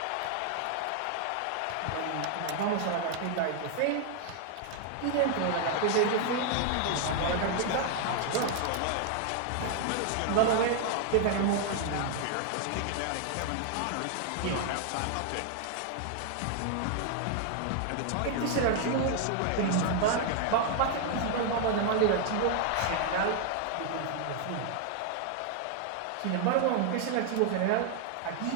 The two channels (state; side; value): different; both; correlation 0.00